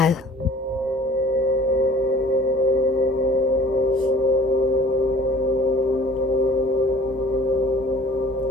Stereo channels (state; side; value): normal; both; correlation 0.49